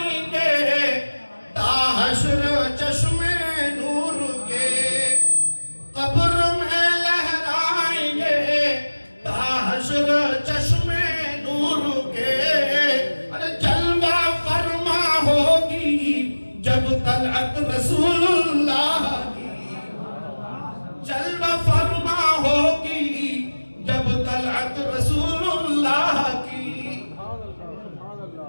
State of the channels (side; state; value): both; inverted; correlation -1.00